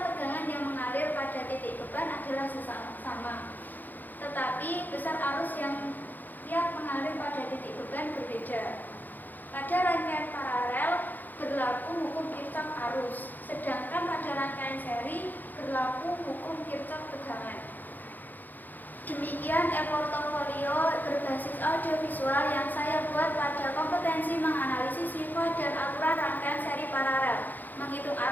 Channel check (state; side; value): late; right; 0.085 ms